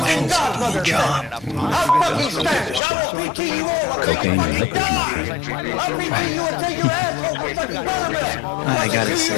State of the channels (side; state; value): right; drops out; at 2.8 s